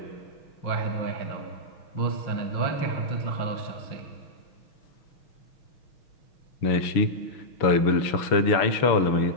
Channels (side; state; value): right; late; 6.3 ms